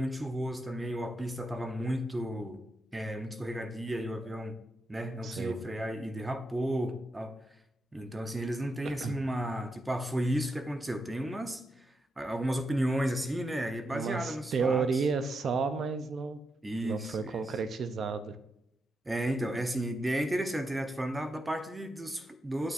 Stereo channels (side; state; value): both; normal; correlation 0.85